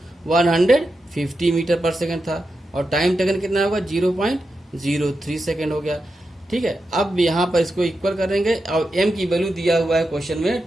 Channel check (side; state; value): both; normal; correlation 0.89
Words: 150 metre per second था, और टाइम टेकन कितना होगा 0.03 सेकेंड हो गया। ठीक है, अब यहाँ पर इसको इक्वल करेंगे, और m की वैल्यू दिया हुआ है क्वेश्चन में